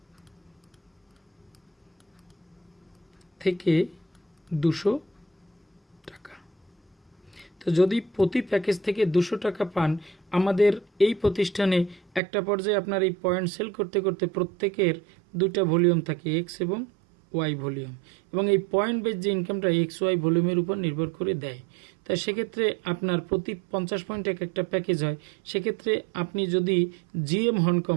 থেকে 200 টাকা। তো যদি প্রতি প্যাকেজ থেকে 200 টাকা পান, আমাদের এই প্রতিষ্ঠানে একটা পর্যায়ে আপনার এই পয়েন্ট সেল করতে করতে প্রত্যেকের 2টা ভলিউম থাকে, এক্স এবং ওয়াই ভলিউম, এবং এই পয়েন্ট বেস যে ইনকামটা এক্স ওয়াই ভলিউমের উপর নির্ভর করে দেয়। তাই সেক্ষেত্রে আপনার প্রতি 50 পয়েন্ট একটা প্যাকেজ হয়। সেক্ষেত্রে আপনি যদি জিএম হন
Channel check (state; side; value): drops out; left; at 12.2 s